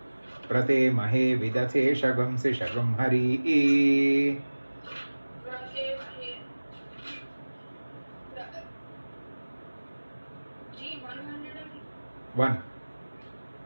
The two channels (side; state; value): both; inverted; correlation -1.00